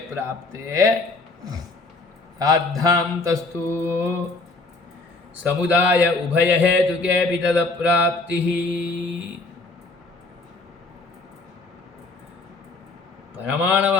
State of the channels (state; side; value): quieter; right; 3.4 dB